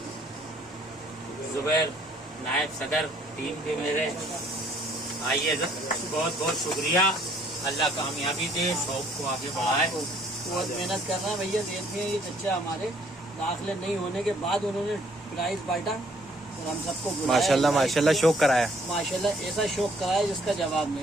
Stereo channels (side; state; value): both; normal; correlation 0.62